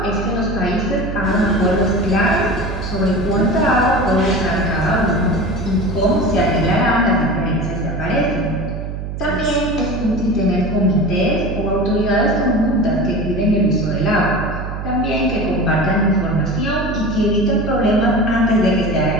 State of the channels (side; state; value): right; noise; hum, 6 dB below the sound